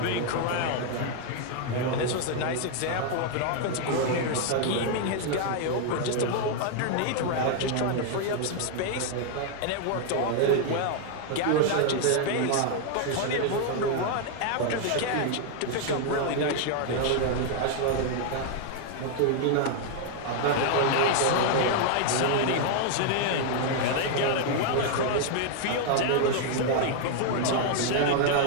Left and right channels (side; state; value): both; different; correlation 0.00